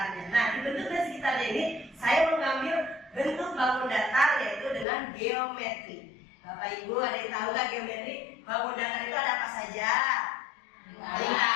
Nah di bentuk dan sekitarnya ini Saya mengambil bentuk bangun datar yaitu dengan geometri. Bapak Ibu ada yang tahu nggak geometri? Bangun datar itu ada apa saja?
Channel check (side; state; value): right; drops out; at 4.9 s